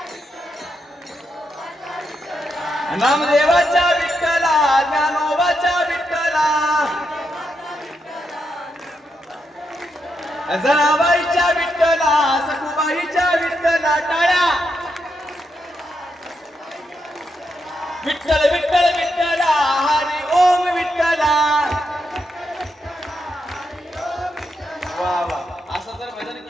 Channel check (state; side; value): normal; both; correlation 0.83